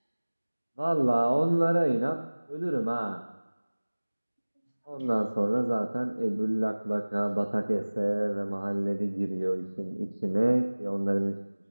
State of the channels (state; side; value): inverted; both; correlation -1.00